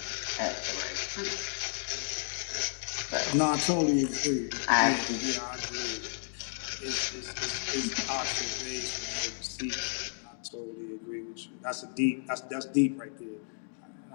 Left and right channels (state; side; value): silent; right; digital silence